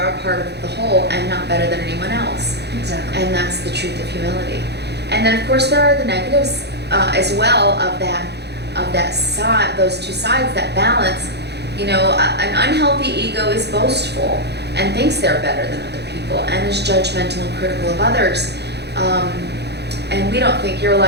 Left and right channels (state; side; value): late; left; 0.49 ms